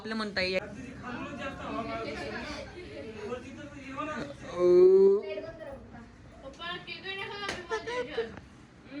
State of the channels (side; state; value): both; identical; correlation 1.00